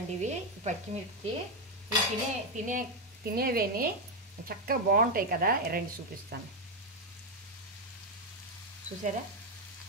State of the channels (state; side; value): normal; both; correlation 0.05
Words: ఇవి పచ్చిమిర్చి. ఇవి తినేవేని చక్కగా బాగుంటాయి కదా. రండి చూపిస్తాను చూసారా